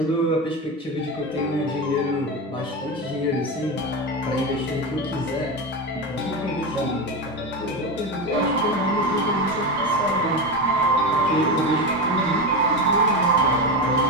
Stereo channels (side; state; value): both; normal; correlation 0.18